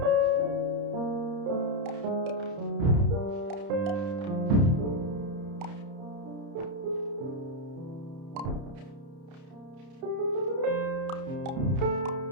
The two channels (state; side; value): late; left; 30 ms